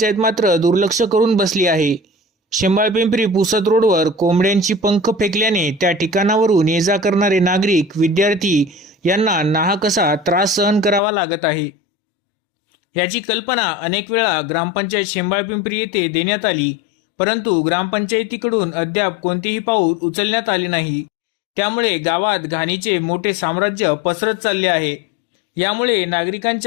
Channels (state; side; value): drops out; right; at 11.0 s